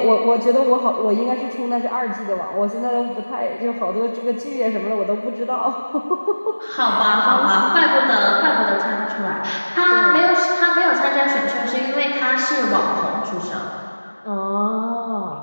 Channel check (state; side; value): inverted; both; correlation -1.00